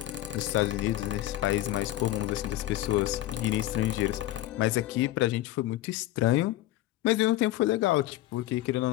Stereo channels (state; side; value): quieter; right; 15.0 dB